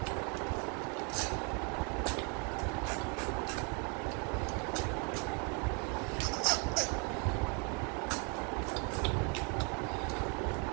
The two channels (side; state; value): left; quieter; 35.2 dB